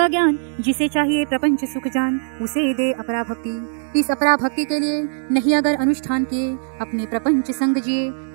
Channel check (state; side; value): silent; left; 65 dB below the other